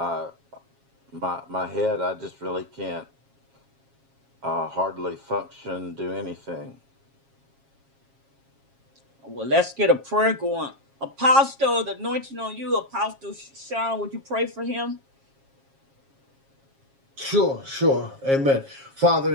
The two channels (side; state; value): left; late; 7.4 ms